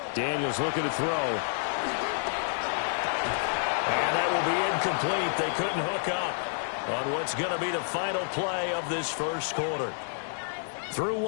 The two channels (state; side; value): silent; right; 59 dB below the other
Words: Daniels looking to throw. And that will be incomplete. They couldn't hook up on what's going to be the final play of this first quarter. Through